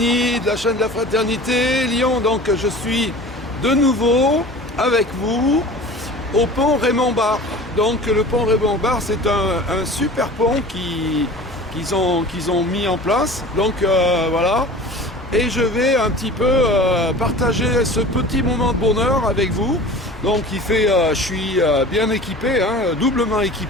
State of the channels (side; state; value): both; normal; correlation 0.40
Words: de la chaîne de la Fraternité Lyon. Donc je suis de nouveau avec vous au pont Raymond-Barre. Donc le pont Raymond-Barre, c'est un super pont qu'ils ont mis en place. Donc voilà, et je vais un petit peu partager ce petit moment de bonheur avec vous. Donc je suis bien équipé, doublement